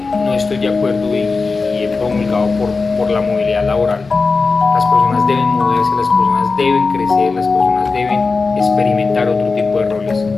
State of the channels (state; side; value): quieter; right; 4.2 dB